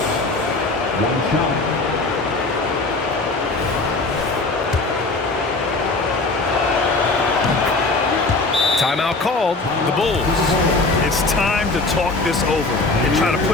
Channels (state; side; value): quieter; right; 3.4 dB